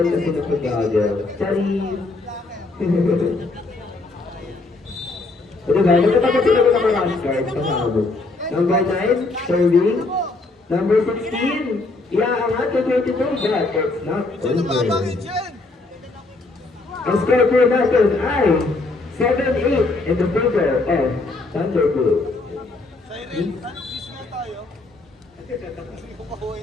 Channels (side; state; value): right; quieter; 3.3 dB